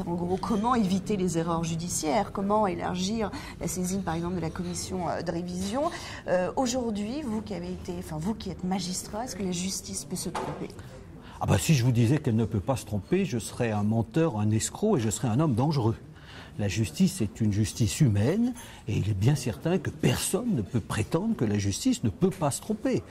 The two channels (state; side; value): identical; both; correlation 1.00